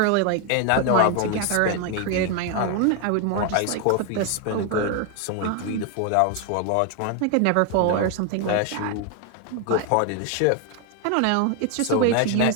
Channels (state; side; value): different; both; correlation 0.01